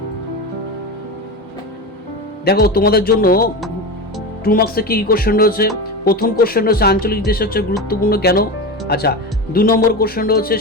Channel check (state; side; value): normal; both; correlation 0.23